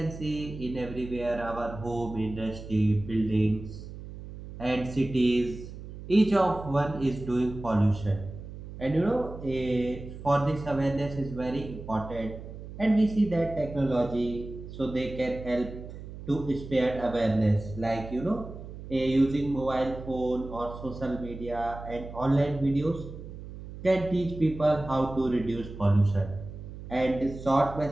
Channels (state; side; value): noise; right; hum, 12 dB below the sound